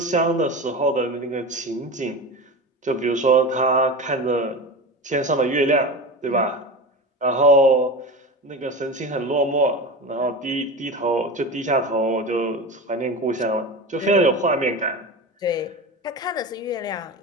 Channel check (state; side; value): normal; both; correlation 0.27